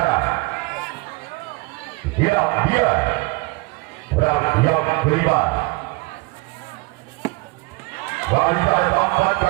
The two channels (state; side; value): quieter; left; 24.5 dB